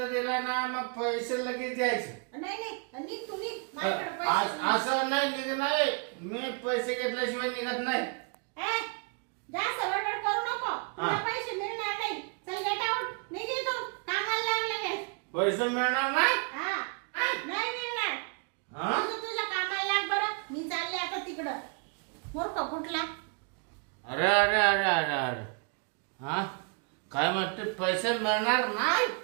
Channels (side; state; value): left; quieter; 36.9 dB